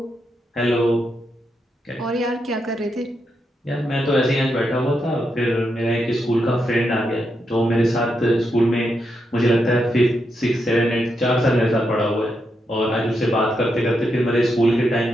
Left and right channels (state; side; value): normal; both; correlation 0.83